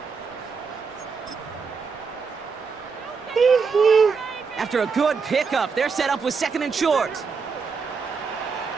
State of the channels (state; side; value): quieter; left; 5.3 dB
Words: After a good pickup, they're set up with 2nd and short.